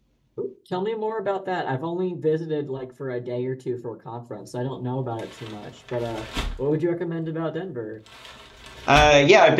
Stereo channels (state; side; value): identical; both; correlation 1.00